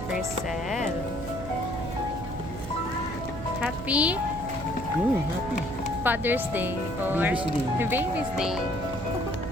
Crisel. Happy Happy. Father's Day or Baby's Day. Baby's Day.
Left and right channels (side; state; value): right; noise; hum, 10 dB below the sound